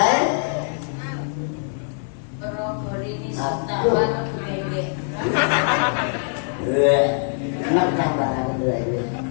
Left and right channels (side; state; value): right; silent; 60 dB below the other